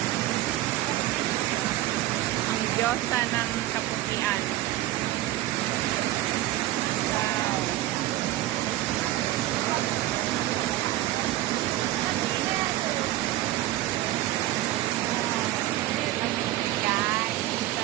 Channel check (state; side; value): quieter; left; 15.5 dB